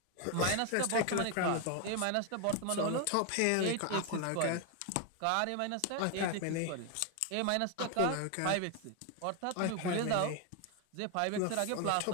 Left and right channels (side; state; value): both; different; correlation 0.01